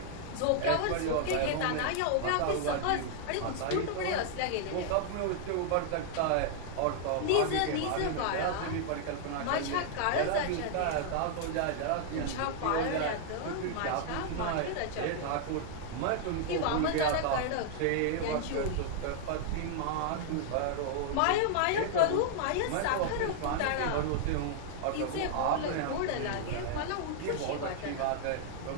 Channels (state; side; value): different; both; correlation 0.00